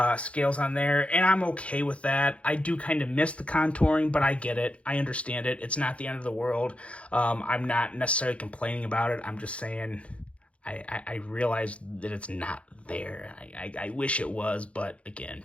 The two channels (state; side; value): late; right; 0.062 ms